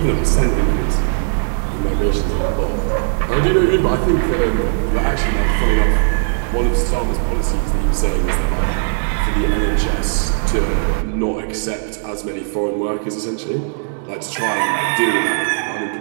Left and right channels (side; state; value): left; silent; digital silence